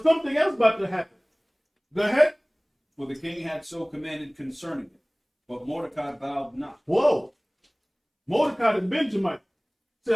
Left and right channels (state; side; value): identical; both; correlation 1.00